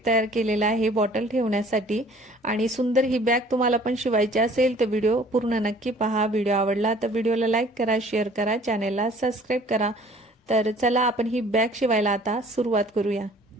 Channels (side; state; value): both; normal; correlation 0.53